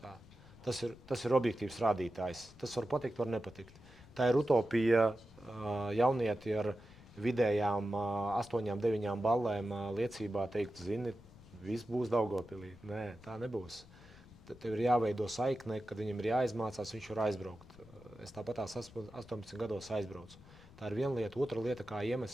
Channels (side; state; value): left; noise; rumble, 22 dB below the sound